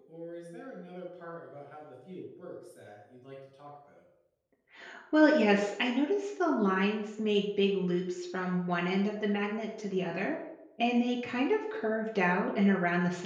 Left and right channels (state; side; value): identical; both; correlation 1.00